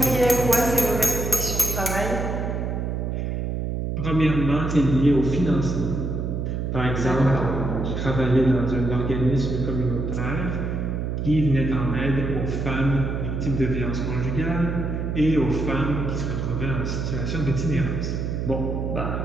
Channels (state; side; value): noise; right; hum, 2 dB below the sound